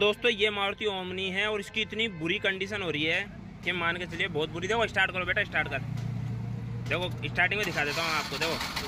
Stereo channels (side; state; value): both; identical; correlation 1.00